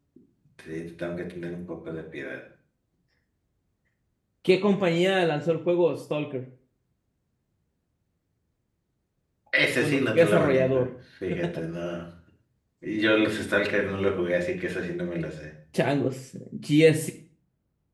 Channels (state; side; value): identical; both; correlation 1.00